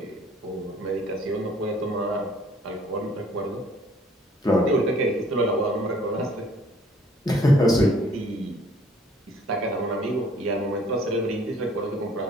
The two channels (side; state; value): both; normal; correlation 0.58